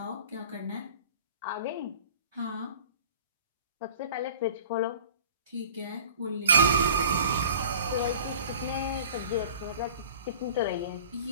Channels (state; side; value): inverted; both; correlation -0.43